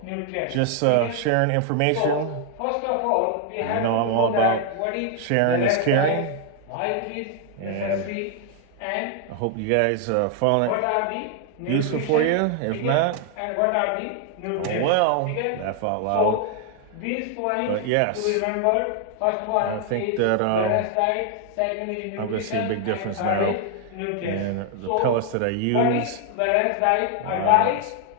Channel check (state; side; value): different; both; correlation 0.00